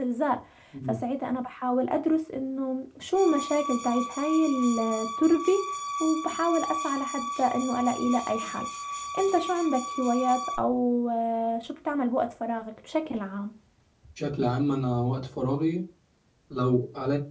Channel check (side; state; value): both; identical; correlation 1.00